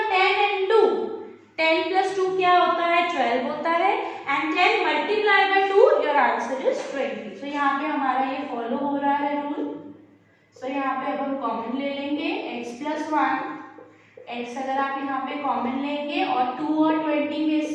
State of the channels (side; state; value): both; identical; correlation 1.00